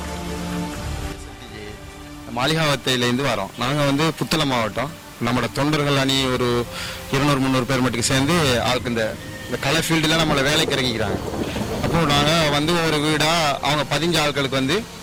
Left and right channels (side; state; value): both; identical; correlation 1.00